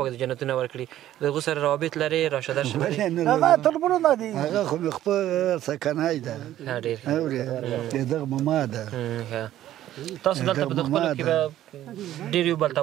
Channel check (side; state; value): left; quieter; 12.9 dB